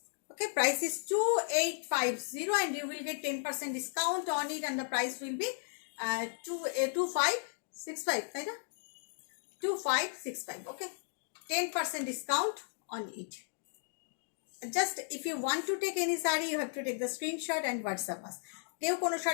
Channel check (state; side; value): silent; right; digital silence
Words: Okay, price is 2850 and you will get 10% discount on it and the price will be 2565, right? 2565. Okay, 10% discount on it. Just if you want to take any saree, you have to take the screenshot and WhatsApp us. কেউ কোনো